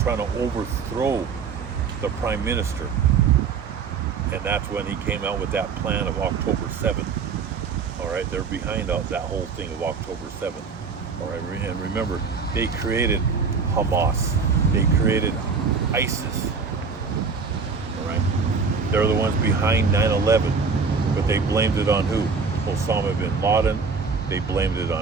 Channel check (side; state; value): left; quieter; 5.2 dB